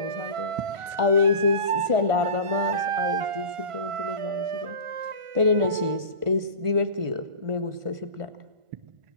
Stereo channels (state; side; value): late; left; 1.5 ms